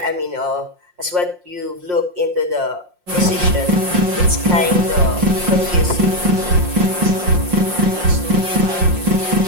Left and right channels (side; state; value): left; late; 5.6 ms